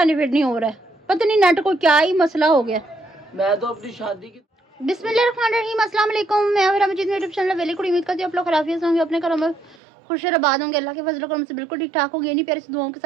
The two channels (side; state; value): left; drops out; at 9.8 s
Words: नहीं हो रहा है। पता नहीं नेट को क्या ही मसला हो गया। मैं तो अपनी शादी की बिस्मिल्लाहिर्रहमानिर्रहीम, अस्सलाम वालेकुम। मैं हूं मजीद, यूट्यूब चैनल वेली कुड़ी। उम्मीद करती हूं आप लोग खराफियत होंगे, अपने घरों में खुश और आबाद होंगे। अल्लाह के फजल करम से बिल्कुल ठीक ठाक होंगे। इन्हीं प्यारे से दुआओं के